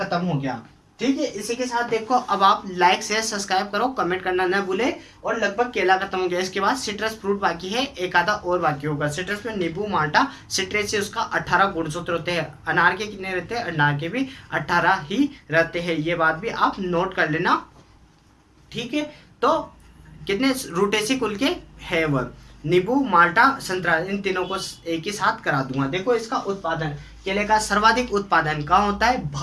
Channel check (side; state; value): both; identical; correlation 1.00